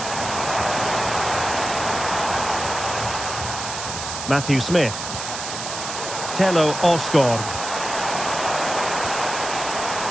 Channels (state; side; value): noise; right; hiss, 6 dB below the sound